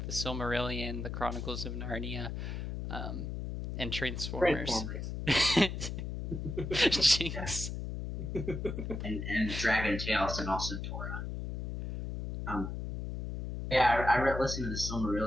the Silmarillion, the Chronicles of Narnia, and Transformers. Jinx. and Dragon Tales and also Torah. Yeah, I listened to the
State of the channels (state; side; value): noise; left; hum, 5 dB below the sound